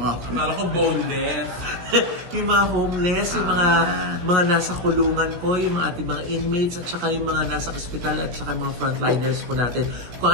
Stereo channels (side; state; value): left; late; 16 ms